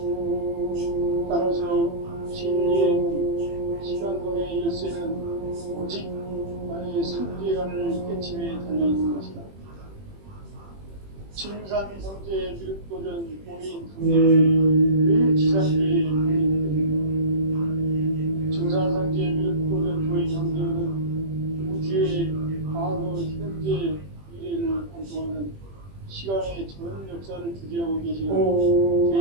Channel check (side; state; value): left; late; 21 ms